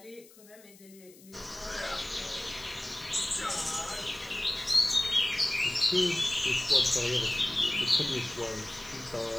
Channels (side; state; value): left; noise; hiss, 23 dB below the sound